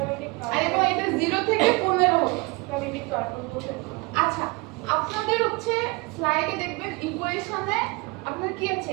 আর এবং এটা 0 থেকে 15 হতো। আচ্ছা, আপনাদের হচ্ছে স্লাইডে দেখবেন ইকুয়েশনে আপনার কি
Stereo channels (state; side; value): quieter; left; 26.7 dB